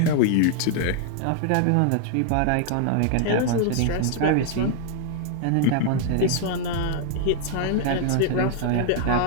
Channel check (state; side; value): different; both; correlation 0.00